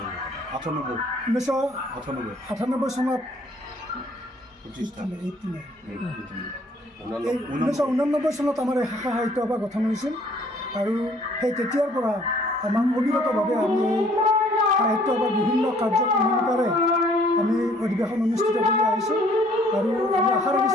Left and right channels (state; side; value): normal; both; correlation 0.59